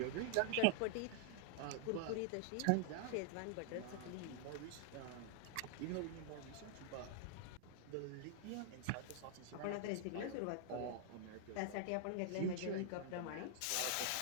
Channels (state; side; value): different; both; correlation 0.00